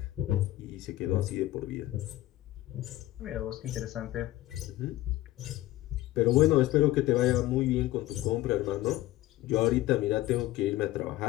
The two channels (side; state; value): right; quieter; 16.1 dB